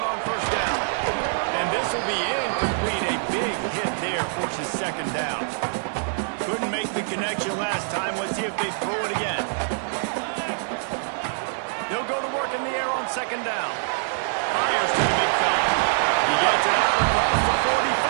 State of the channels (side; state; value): left; silent; digital silence